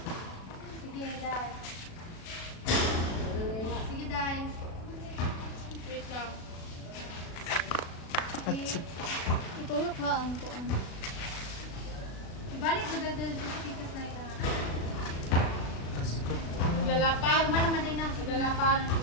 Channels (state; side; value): late; right; 36 ms